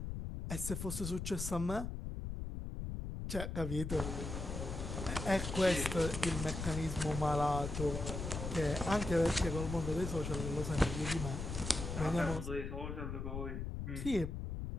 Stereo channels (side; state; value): left; noise; rumble, 5 dB below the sound